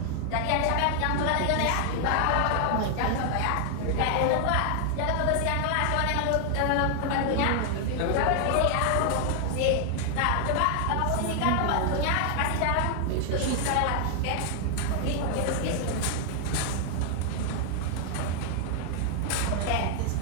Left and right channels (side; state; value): both; different; correlation 0.00